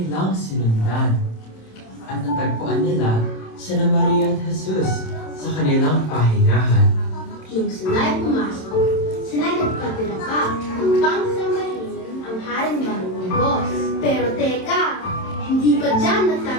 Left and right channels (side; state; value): right; late; 27 ms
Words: sinundan. At natagpuan nila sina Maria at Jesus sa kanilang pahingahan. Nung sila'y pumasok, sila'y nagpatira pa upang samahin ang haring marunggos. Pero teka, hindi pa dyan